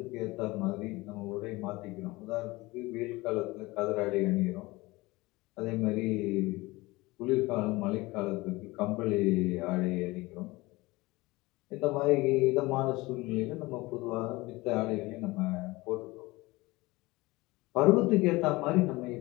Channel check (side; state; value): right; quieter; 21.5 dB